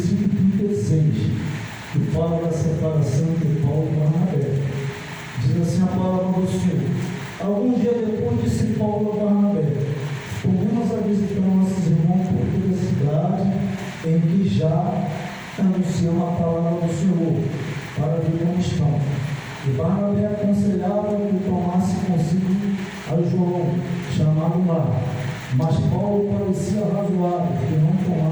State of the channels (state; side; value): identical; both; correlation 1.00